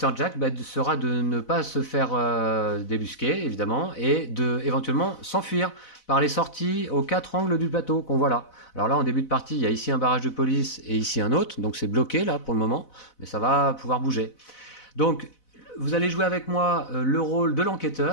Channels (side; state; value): right; late; 4.0 ms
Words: Jack sera de ne pas se faire débusquer, évidemment, et de éventuellement s'enfuir par les sorties aux 4 angles du plateau qu'on voit là. Alors là, en début de partie, il y a ici un barrage de police et ici un autre, donc c'est bloqué là pour le moment, mais ça va pouvoir bouger. Donc vous allez jouer avec moi le rôle de